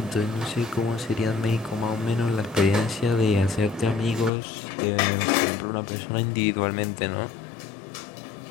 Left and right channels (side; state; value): right; drops out; at 4.3 s